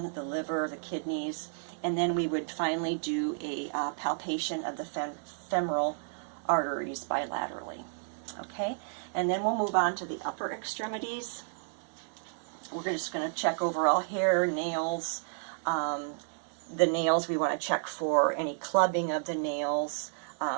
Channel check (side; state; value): left; silent; digital silence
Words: the liver, the kidneys, and then we would finally do a palpation of the femoral arteries bilaterally. Okay, and then we'll move on to the upper extremities. We're just going to check overall hair, nails. The nails, we want to check for any clubbing of the nails.